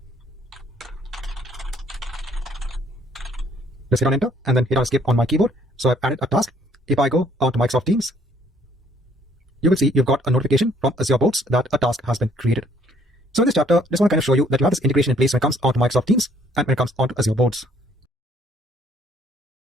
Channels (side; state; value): both; normal; correlation 0.63